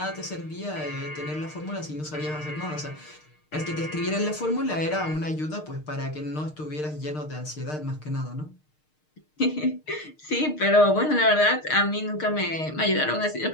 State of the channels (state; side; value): late; right; 6.6 ms